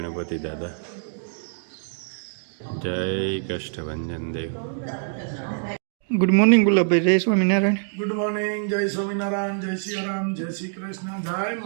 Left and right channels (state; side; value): silent; left; digital silence